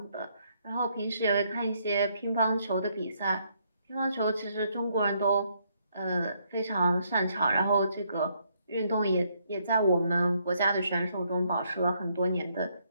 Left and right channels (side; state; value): both; inverted; correlation -0.72